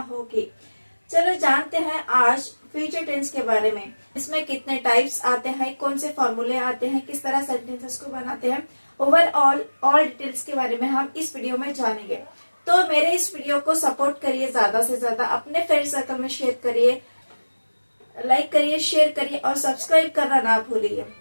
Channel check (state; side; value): inverted; both; correlation -1.00